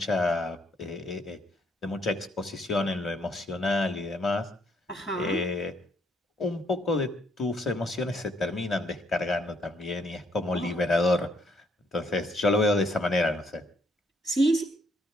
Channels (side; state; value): both; normal; correlation 0.70